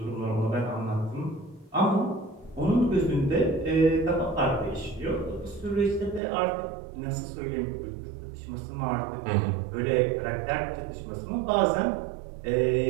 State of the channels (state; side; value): drops out; left; at 6.2 s